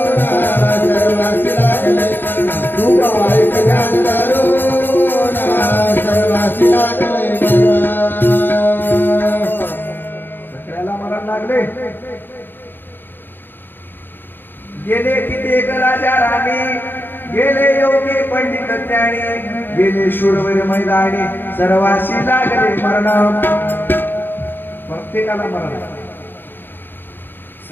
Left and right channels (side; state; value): right; late; 0.095 ms